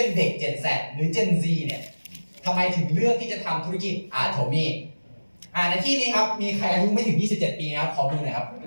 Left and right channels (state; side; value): inverted; both; correlation -1.00